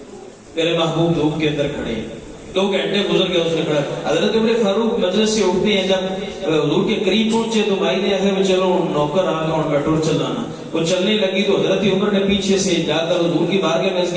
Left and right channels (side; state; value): both; identical; correlation 1.00